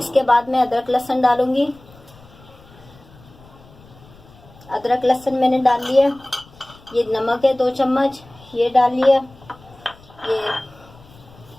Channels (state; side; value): noise; left; rumble, 24 dB below the sound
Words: बाद मैं अदरक लहसुन डालूंगी। अदरक लहसुन मैंने डाल लिया। ये नमक है 2 चम्मच, ये डाल लिया। ये